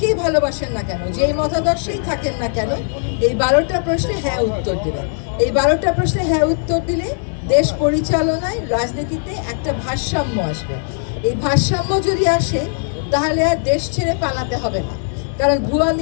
ভালোবাসেন না কেন, যেই মতাদর্শেই থাকেন না কেন, এই 12টা প্রশ্নে হ্যাঁ উত্তর দেবেন। এই 12টা প্রশ্নে হ্যাঁ উত্তর দিলে দেশ পরিচালনায়, রাজনীতিতে একটা ভারসাম্য আসবে। এই ভারসাম্য যদি আসে তাহলে আর দেশ ছেড়ে পালাতে হবে না, কারণ ভুয়া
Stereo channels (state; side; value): silent; right; 63 dB below the other